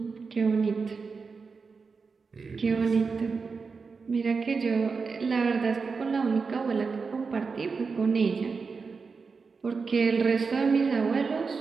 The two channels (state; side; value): quieter; left; 4.9 dB